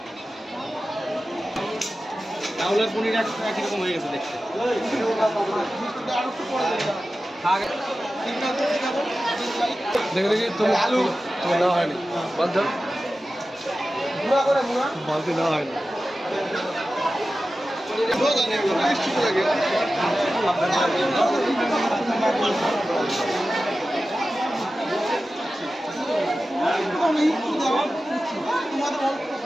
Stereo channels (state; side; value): normal; both; correlation 0.94